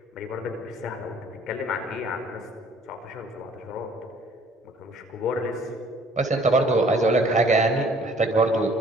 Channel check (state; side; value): normal; both; correlation 0.56